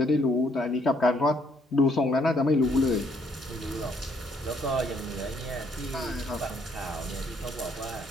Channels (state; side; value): normal; both; correlation 0.68